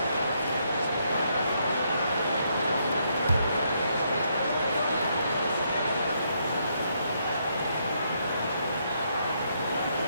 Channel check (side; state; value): both; inverted; correlation -0.75